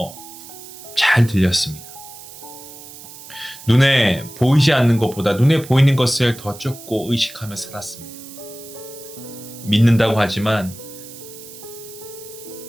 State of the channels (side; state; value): right; noise; hiss, 16 dB below the sound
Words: 잘 들렸습니다. 눈에 보이지 않는 것보다 눈에 보이는 것을 더 쫓고 의식하며 살았습니다. 믿는다고 하지만